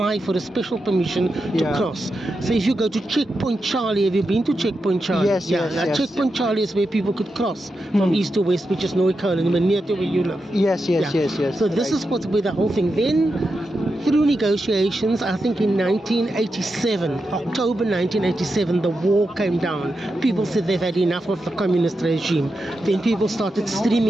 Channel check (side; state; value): both; normal; correlation 0.88